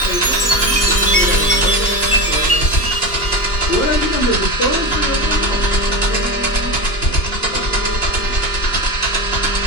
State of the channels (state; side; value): late; right; 2.9 ms